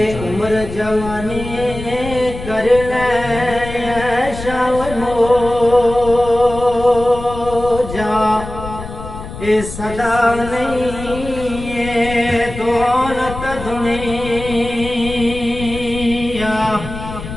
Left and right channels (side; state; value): left; noise; rumble, 10 dB below the sound